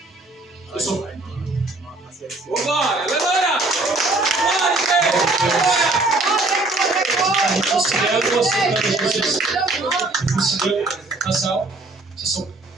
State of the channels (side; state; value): left; quieter; 3.0 dB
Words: Eu sou... Casal, vocês são